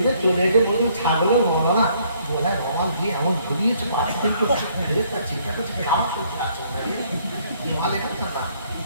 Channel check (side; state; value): both; inverted; correlation -0.65